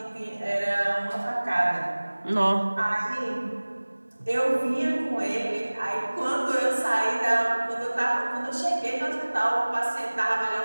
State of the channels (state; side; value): inverted; both; correlation -1.00